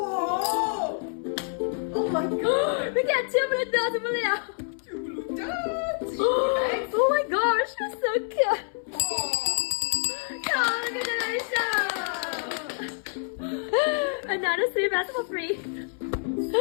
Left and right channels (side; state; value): right; silent; 60 dB below the other